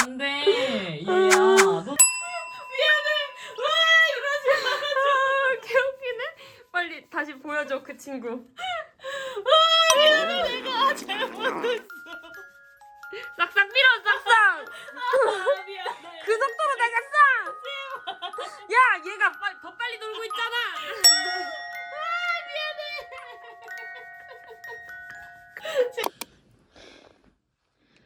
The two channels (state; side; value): identical; both; correlation 1.00